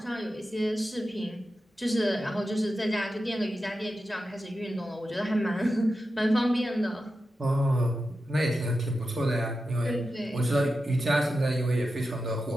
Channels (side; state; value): both; normal; correlation 0.91